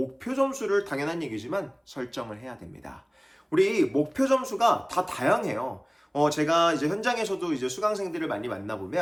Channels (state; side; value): identical; both; correlation 1.00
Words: 점수를 당연한 얘기지만 설정을 해야 됩니다. 우리 목표 점수가 다 다양해요. 제가 이제 현장에서도 이제 수강생들을 많이